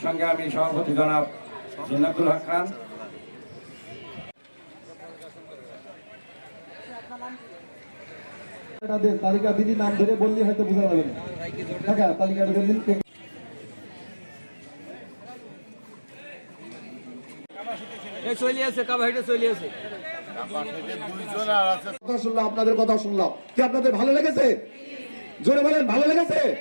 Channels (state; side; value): inverted; both; correlation -1.00